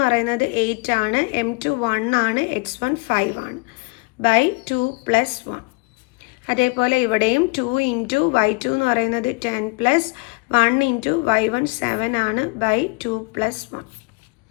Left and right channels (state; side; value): quieter; right; 28.9 dB